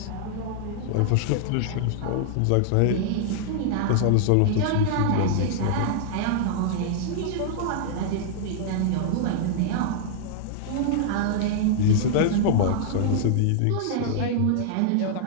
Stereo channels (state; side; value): different; both; correlation -0.01